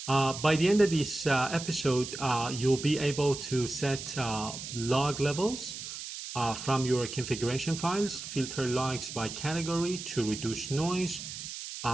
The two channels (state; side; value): noise; right; hiss, 9 dB below the sound